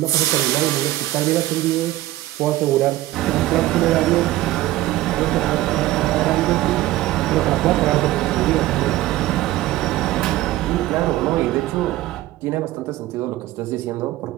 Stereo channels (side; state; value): left; quieter; 16.0 dB